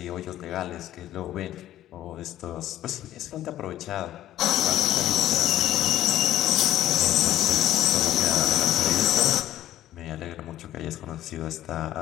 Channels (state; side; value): quieter; right; 13.2 dB